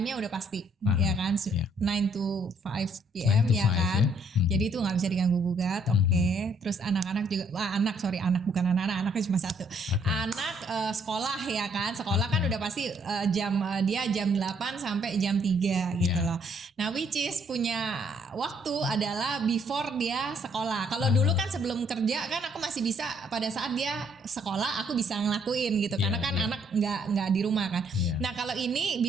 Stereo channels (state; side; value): normal; both; correlation 0.67